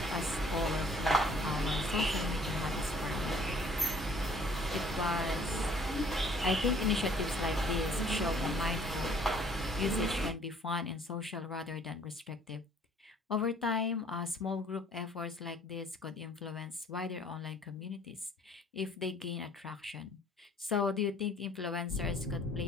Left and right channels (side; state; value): both; normal; correlation 0.57